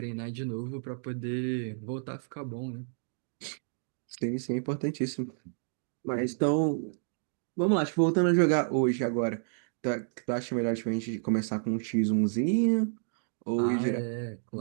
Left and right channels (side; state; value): left; silent; digital silence